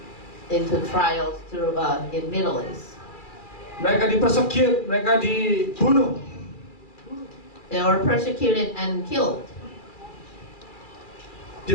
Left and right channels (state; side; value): late; right; 2.4 ms